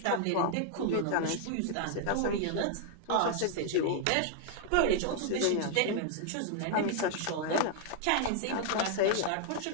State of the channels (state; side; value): different; both; correlation 0.00